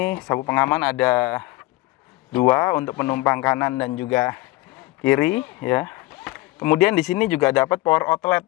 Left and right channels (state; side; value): quieter; right; 20.5 dB